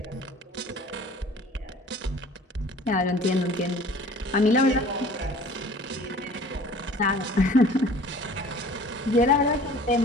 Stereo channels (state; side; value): normal; both; correlation 0.48